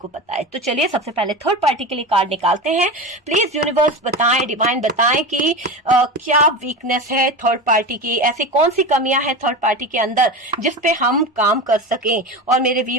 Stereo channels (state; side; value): normal; both; correlation 0.25